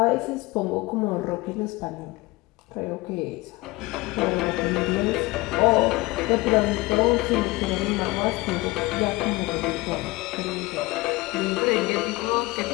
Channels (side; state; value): right; quieter; 21.9 dB